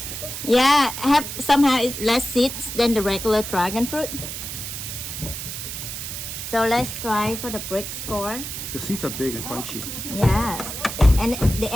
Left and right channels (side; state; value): right; noise; hiss, 7 dB below the sound